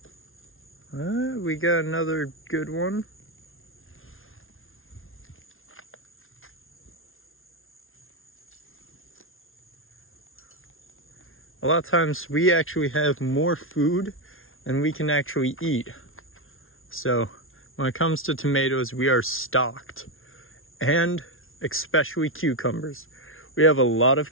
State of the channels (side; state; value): right; late; 0.60 ms